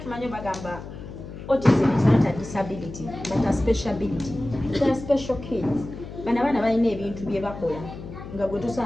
tumanyi bagamba autism is not a disability but a special ability. They are special kids bano abaana balina ebintu bye bakola nga gwe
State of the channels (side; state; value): left; noise; hum, 12 dB below the sound